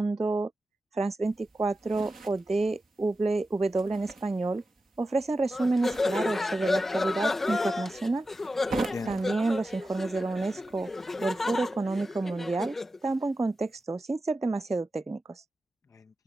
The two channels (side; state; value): both; normal; correlation 0.92